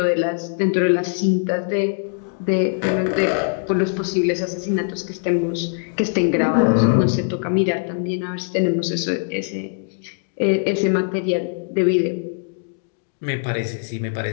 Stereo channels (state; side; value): silent; right; digital silence